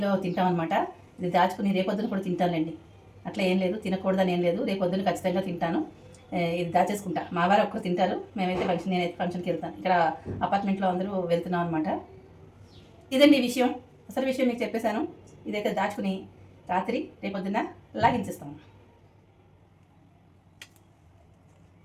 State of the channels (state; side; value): identical; both; correlation 1.00